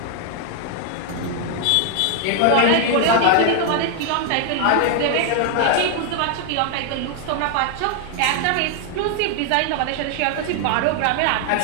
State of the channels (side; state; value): both; different; correlation 0.00